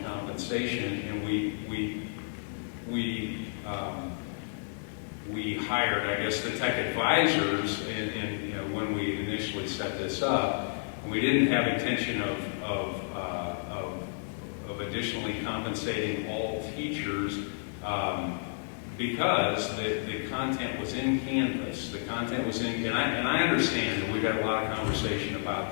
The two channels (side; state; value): right; silent; digital silence